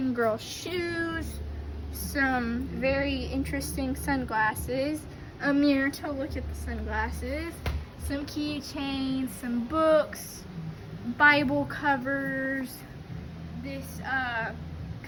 Girl shoes, some very interesting sunglasses, a mirror to look at the sunglasses, some keychains, some books, Bible covers, this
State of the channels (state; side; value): identical; both; correlation 1.00